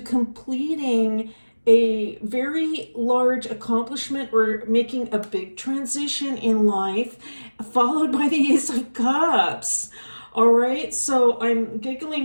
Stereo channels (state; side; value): inverted; both; correlation -1.00